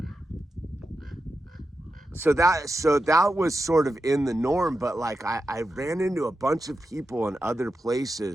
so that was sort of in the norm. But like I ran into a bunch of people in other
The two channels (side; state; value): both; normal; correlation 0.89